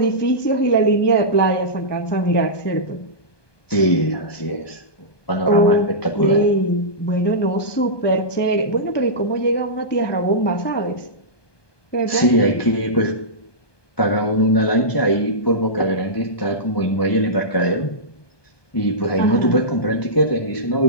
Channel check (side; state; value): right; late; 1.2 ms